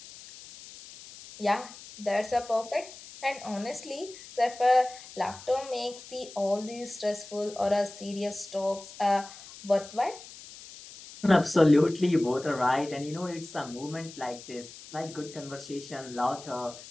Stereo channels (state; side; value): noise; left; hiss, 16 dB below the sound